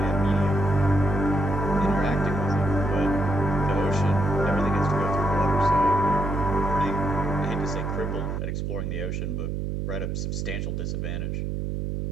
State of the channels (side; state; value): right; noise; hum, 2 dB below the sound